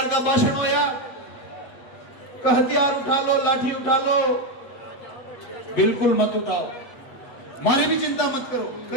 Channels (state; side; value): late; right; 8.3 ms